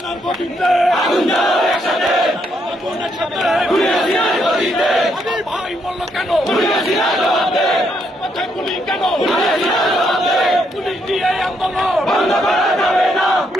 গতিতে আগুন জ্বালো একসাথে আগুনের সাথে হাসিনার গতিতে আমার ভাই বলল কেন হাসিনার জবাবে মাথায় গুলি কেন হাসিনার জবাবে পুলিশ দিয়ে আন্দোলন বন্ধ করা যাবে না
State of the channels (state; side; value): normal; both; correlation 0.75